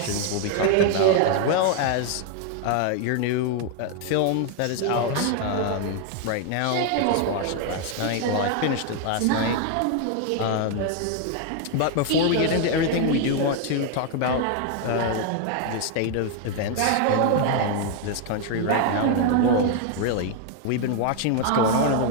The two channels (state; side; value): different; both; correlation 0.00